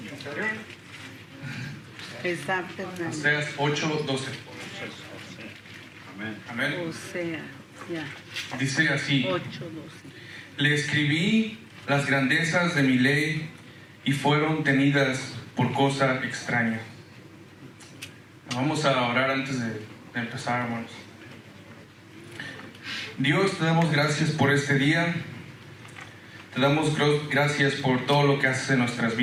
Oseas 8, 12. Amén. Dice así: 8:12. Le escribí las grandezas de mi ley y fueron tenidas por cosa extraña. Vamos a orar antes de empezar, hermanos. Dios, te damos gracias por este día. Te damos gracias por todo lo que haces en nuestras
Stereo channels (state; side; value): identical; both; correlation 1.00